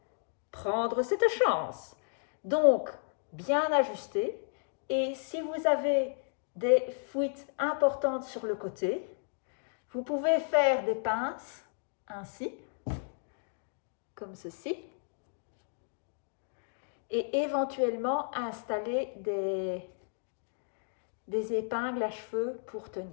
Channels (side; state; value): right; silent; digital silence